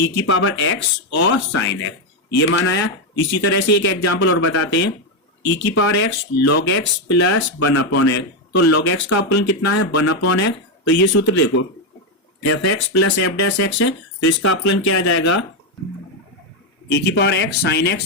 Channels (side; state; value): both; normal; correlation 0.06